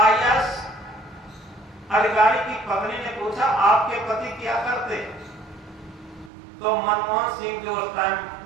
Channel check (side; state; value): left; drops out; at 6.3 s